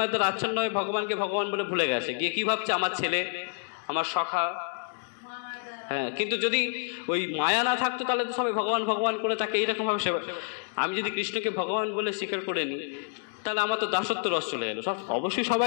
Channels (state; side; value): silent; right; 59 dB below the other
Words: দ্বারা আচ্ছন্ন হয়ে ভগবানকে ভগবান বলে ভুলে গেছে, গিয়ে কি ভাবছে? আমার ছেলে, আমার সখা। হ্যাঁ, কিন্তু যদি ওই মায়া না থাকতো তাহলে তো সবাই ভগবান ভগবান করে তাকে এইরকমভাবে সেবা। আমি যদি কৃষ্ণকে ভগবান বলে স্বীকার করে নিই, তাহলে আমার তো দাসত্ব রস চলে এলো। সব অবশ্যই